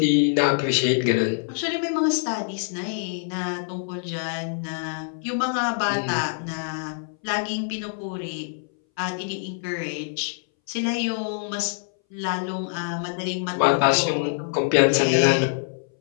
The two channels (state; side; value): silent; right; 61 dB below the other